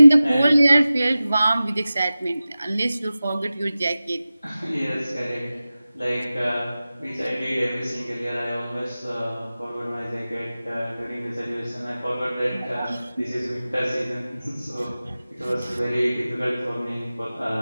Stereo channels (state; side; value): inverted; both; correlation -0.96